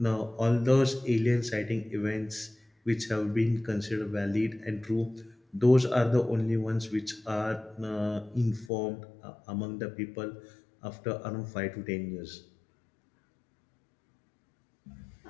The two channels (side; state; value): right; drops out; at 8.7 s